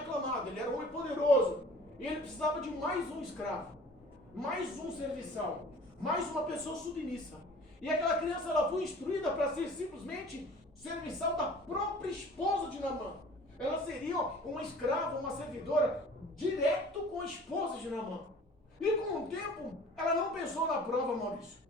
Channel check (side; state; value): both; normal; correlation 0.47